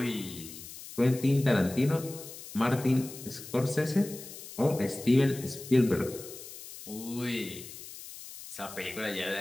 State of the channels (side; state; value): left; noise; hiss, 14 dB below the sound